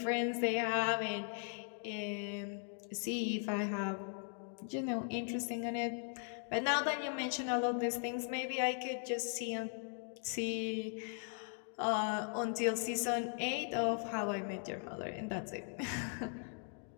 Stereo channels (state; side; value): silent; right; 52 dB below the other